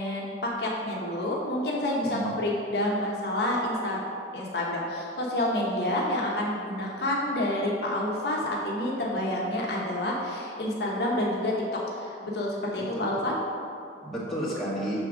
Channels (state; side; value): normal; both; correlation 0.22